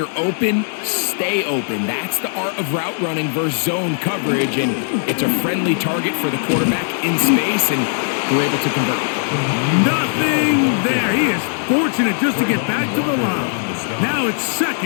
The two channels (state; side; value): silent; right; digital silence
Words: open, stay open. That's the art of route running versus zone coverage, and it's a friendly target for the quarterback in space, and we're able to convert. Nothing there. He is fortunate just to get back to the line. Now it's